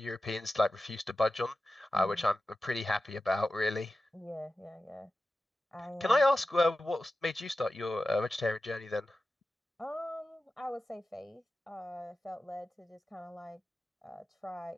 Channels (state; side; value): normal; both; correlation 0.94